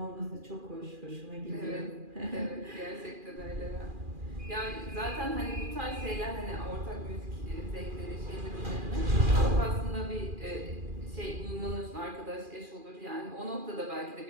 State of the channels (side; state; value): left; late; 2.4 ms